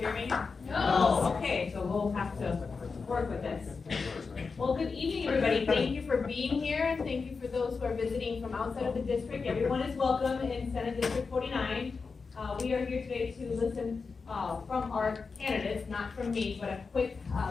me? No. Okay, so we'll have to work with this. Well, good evening, everybody. Thank you for being here, and thank you for those who are visiting from outside of the district. Everyone is welcome in Senate District 49. We are here today to listen from our candidates, not from me, but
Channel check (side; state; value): right; quieter; 4.8 dB